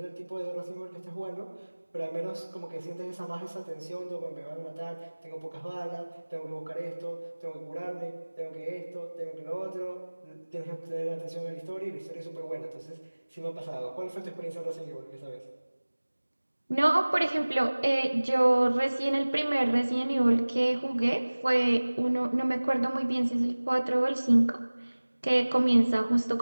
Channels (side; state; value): both; inverted; correlation -1.00